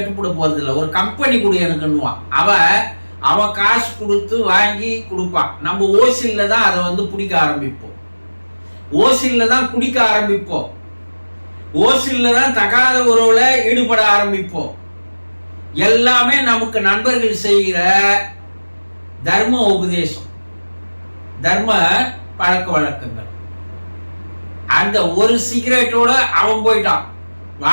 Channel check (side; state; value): both; inverted; correlation -1.00